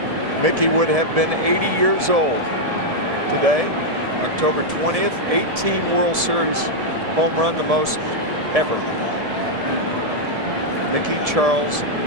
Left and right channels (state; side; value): late; left; 1.7 ms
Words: Mickey would have been 80 years old today. October 20th, 18 World Series home run, the most ever. Mickey Charles